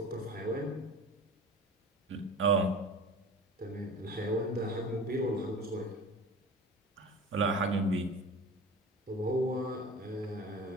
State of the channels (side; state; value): both; normal; correlation 0.37